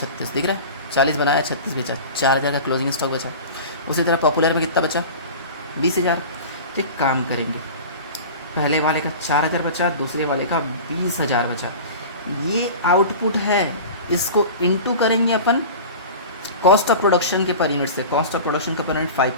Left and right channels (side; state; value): both; inverted; correlation -0.34